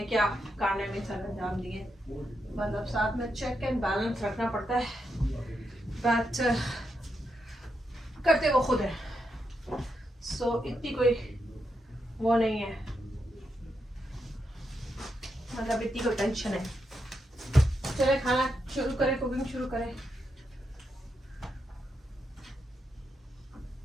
क्या खाने में सर अंजाम दिए, मतलब साथ में चेक एंड बैलेंस रखना पड़ता है, बट करते वो खुद है, सो इतनी कोई वो नहीं है, मतलब इतनी कोई टेंशन है। चले खाना शुरू करें, कुकिंग शुरू करें।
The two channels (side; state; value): both; normal; correlation 0.83